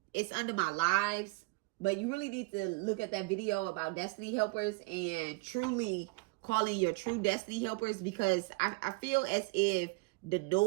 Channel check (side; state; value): left; quieter; 26.9 dB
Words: It's under my lives, but you really need to look at that video about destiny helpers and truly calling your true destiny helpers, because I feel as if the